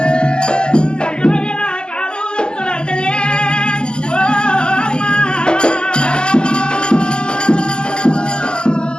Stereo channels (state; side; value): late; right; 0.050 ms